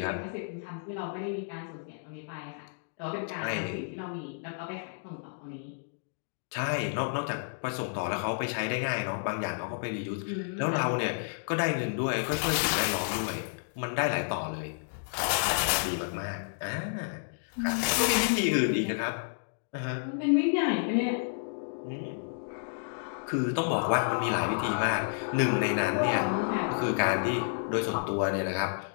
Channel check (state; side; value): silent; right; digital silence